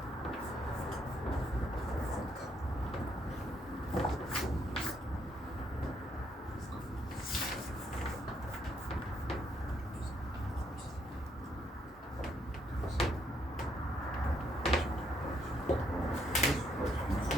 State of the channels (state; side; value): normal; both; correlation 0.73